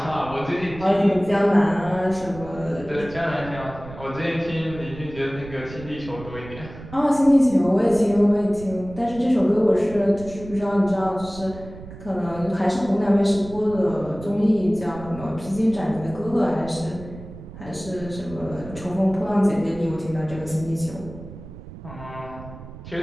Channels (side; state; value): right; noise; rumble, 15 dB below the sound